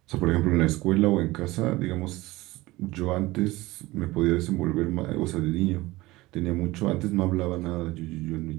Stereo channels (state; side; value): quieter; left; 19.6 dB